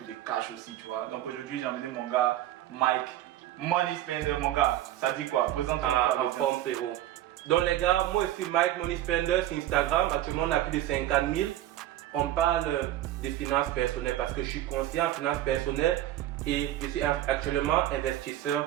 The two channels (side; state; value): left; quieter; 13.5 dB